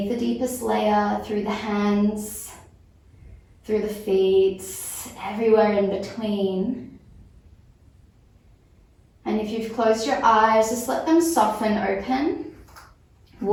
the deepest layer, through the hands, through the feet, everywhere in between. And if you've closed your eyes, just let them soften open.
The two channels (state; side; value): identical; both; correlation 1.00